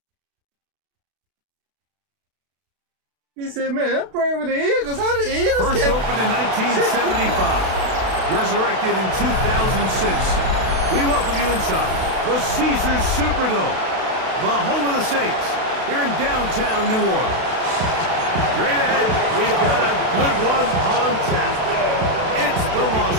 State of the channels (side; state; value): left; late; 32 ms